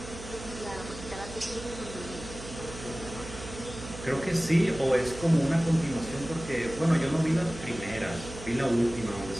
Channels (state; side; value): noise; right; hum, 12 dB below the sound